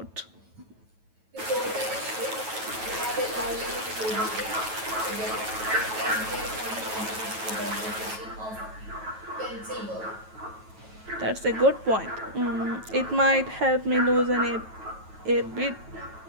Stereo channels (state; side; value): late; left; 9.2 ms